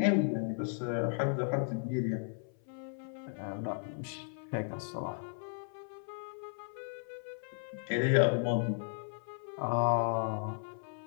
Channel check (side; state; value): right; silent; 54 dB below the other